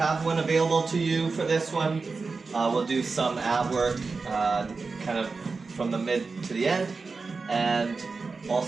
one available to you for this one. We'll do some ab work kind of from the mid to the end, and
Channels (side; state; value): left; quieter; 4.3 dB